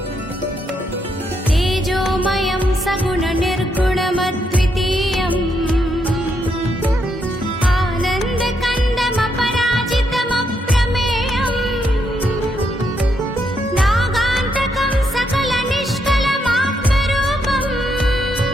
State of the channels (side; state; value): both; normal; correlation 0.78